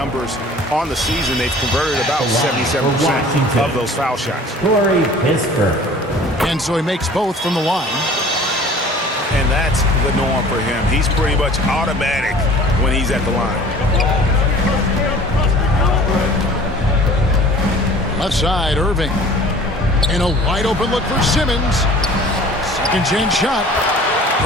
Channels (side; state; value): both; normal; correlation 0.47